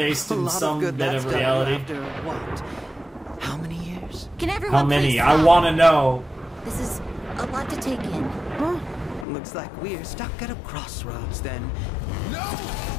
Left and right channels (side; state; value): right; drops out; at 9.2 s